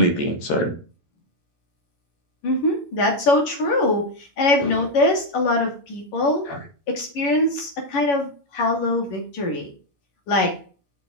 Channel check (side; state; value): right; late; 11 ms